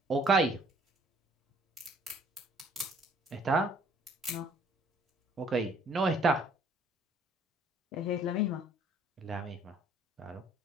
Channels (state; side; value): normal; both; correlation 0.58